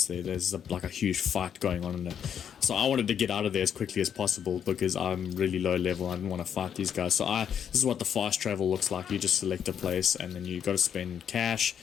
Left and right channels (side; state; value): right; quieter; 8.4 dB